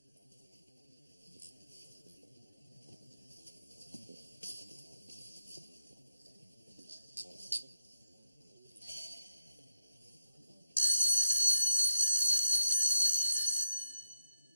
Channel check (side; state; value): both; inverted; correlation -0.88